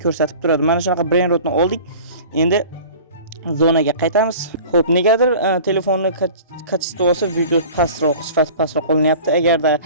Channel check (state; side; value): inverted; both; correlation -0.42